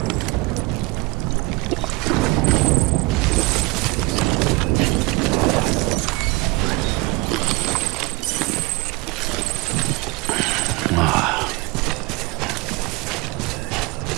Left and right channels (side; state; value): left; quieter; 24.0 dB